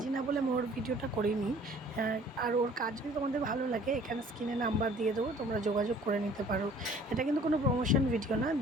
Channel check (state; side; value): normal; both; correlation 0.53